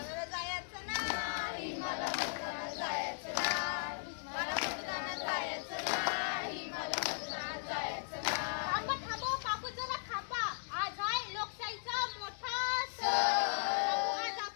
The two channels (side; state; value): right; silent; digital silence